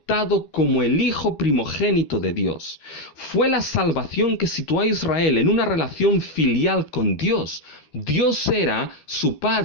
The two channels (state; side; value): late; right; 13 ms